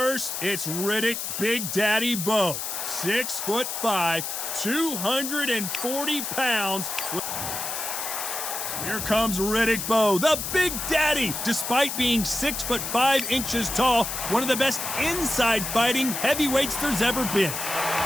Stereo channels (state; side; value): noise; left; hiss, 4 dB below the sound